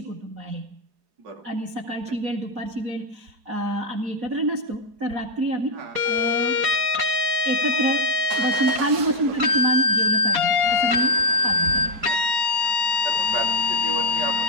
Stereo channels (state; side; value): late; left; 4.8 ms